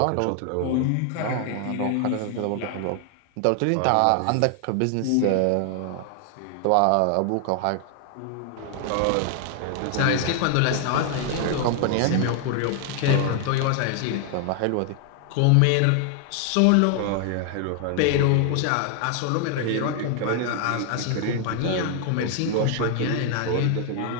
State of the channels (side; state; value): both; different; correlation 0.00